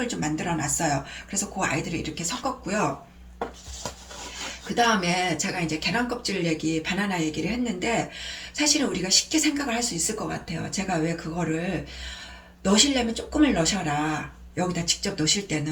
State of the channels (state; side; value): identical; both; correlation 1.00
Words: 좀 만들어 놨어요. 그래서 그 아이들을 이렇게 섞었고요. 그 다음에 제가 이제 계란 껍질 바나나 얘기를 했는데 사실은 우리가 쉽게 생각을 할 수 있을 것 같아요. 제가 왜 그거를 넣으시려면 조금을 넣으셔라. 여기다 직접 넣으실